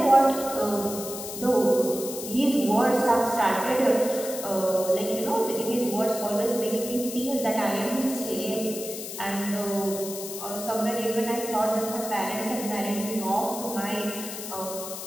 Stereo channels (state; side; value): noise; left; hiss, 9 dB below the sound